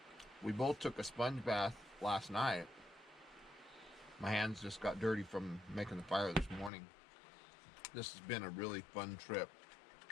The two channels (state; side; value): drops out; right; at 6.7 s